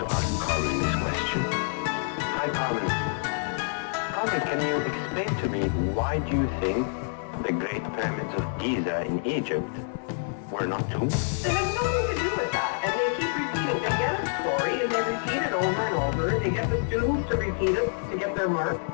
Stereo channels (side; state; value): right; silent; digital silence